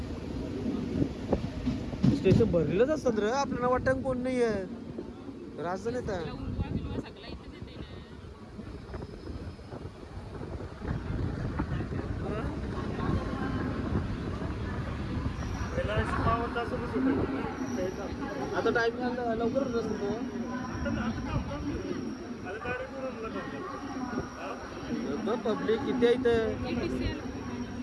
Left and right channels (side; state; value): both; identical; correlation 1.00